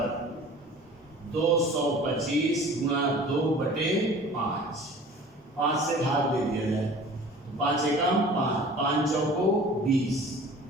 225 गुणा 2/5। 5 से भाग दे दिया जाए तो 5 एकम 5, 5 चौको 20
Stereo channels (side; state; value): both; normal; correlation 0.44